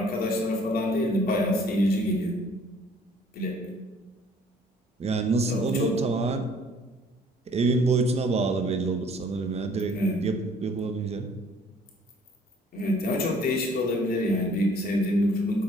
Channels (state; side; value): normal; both; correlation 0.57